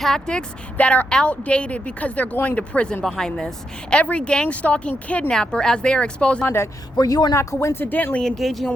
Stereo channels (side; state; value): both; normal; correlation 0.83